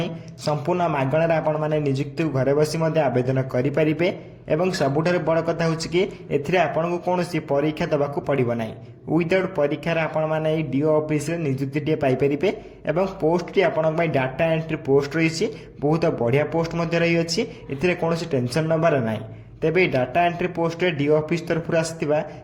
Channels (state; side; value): identical; both; correlation 1.00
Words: संपूर्ण मागणार आपण मैंने नियुक्ति घरे बसी आवेदन करेंगे। एवं सबुठार बड़ कथा हूँ कि एथिरे आपन को कौन परीक्षा दबाक पड़ो ना, विदाउट परीक्षार आपण मैंने डीओ ऑफिस नियुक्ति पाइपर। एवं पोस्ट टी आपण डाटा एंट्री पोस्ट रही बहुत बढ़िया पोस्ट रही है, कौन टेंशन नबार ना। तेबे data entry post DO office तरफ आसवा